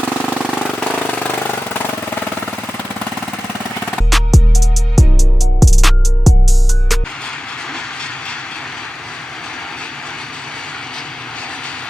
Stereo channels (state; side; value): normal; both; correlation 0.96